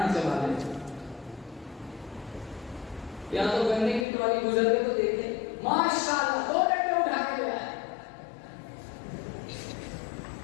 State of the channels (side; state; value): right; drops out; at 4.0 s